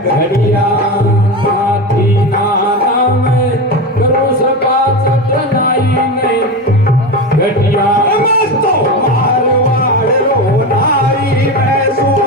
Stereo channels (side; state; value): both; normal; correlation 0.21